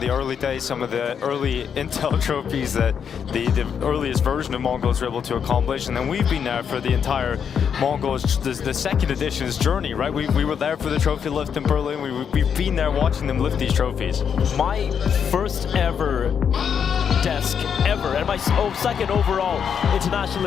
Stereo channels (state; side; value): quieter; right; 7.4 dB